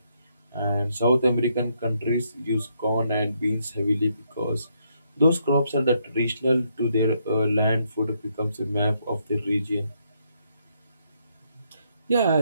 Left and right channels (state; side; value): inverted; both; correlation -0.75